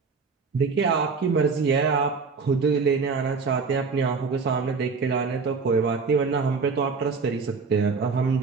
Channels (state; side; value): quieter; left; 4.8 dB